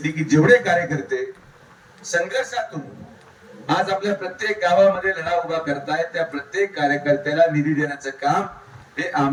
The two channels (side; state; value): both; identical; correlation 1.00